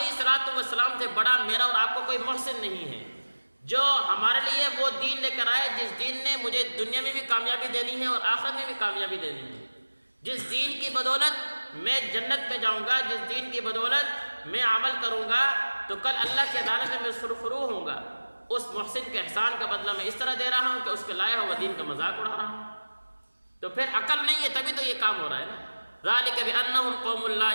الصلوۃ والسلام سے بڑا میرا اور آپ کو کوئی محسن نہیں ہے، جو ہمارے لیے وہ دین لے کر آئے جس دین نے مجھے دنیا میں بھی کامیابی دینی ہے اور آخرت میں بھی کامیابی دینی ہے، جس دین کی بدولت میں جنت میں جاؤں گا، جس دین کی بدولت میں عمل کروں گا تو کل اللہ کی عدالت میں سرخرو ہوں گا، اس محسن کے احسان کا بدلہ میں اس طرح دے رہا ہوں کہ اس کے لایا ہوا دین کا مذاق اڑا رہا ہوں، تو پھر عقل نہیں ہے تبھی تو یہ کام ہو رہا ہے نا۔ ذَلِكَ بِأَنَّهُمْ قَوْمٌ لَا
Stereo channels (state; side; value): inverted; both; correlation -1.00